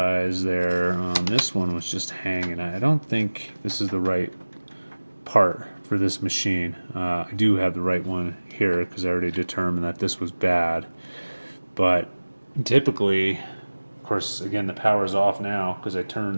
there. This one was just hanging. I don't think this is the right part for this machine. I do have the right one here because I already determined that this was bad. But typically, of course, again, the power's off now because I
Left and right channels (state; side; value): inverted; both; correlation -1.00